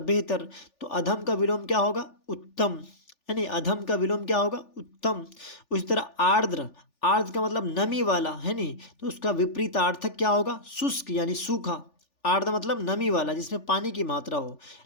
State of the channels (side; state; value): right; late; 3.4 ms